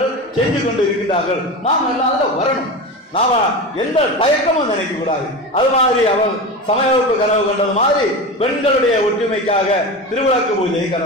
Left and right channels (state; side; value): normal; both; correlation 0.25